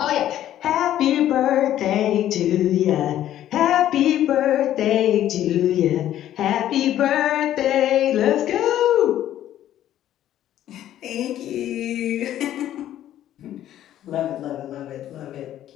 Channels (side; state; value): right; quieter; 12.1 dB